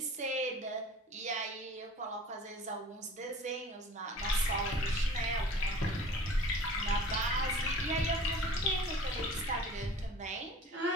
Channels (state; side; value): normal; both; correlation 0.45